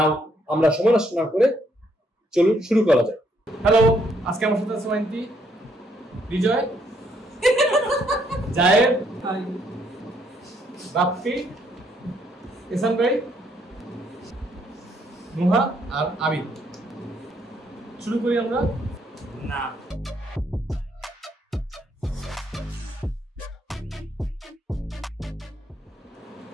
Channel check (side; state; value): both; normal; correlation 0.71